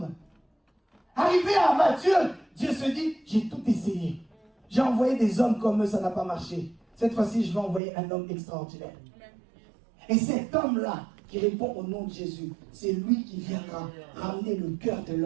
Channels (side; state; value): left; drops out; at 7.8 s